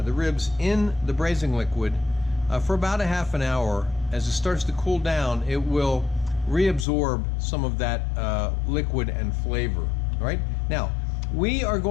ribs, in the braising liquid for about ½ hour, as it starts to cool down, it will reabsorb some of that liquid and flavor. All right? Now, we are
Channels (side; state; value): right; drops out; at 6.9 s